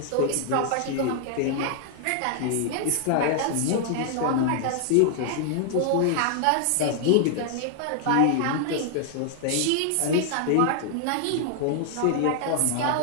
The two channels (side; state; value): both; different; correlation 0.00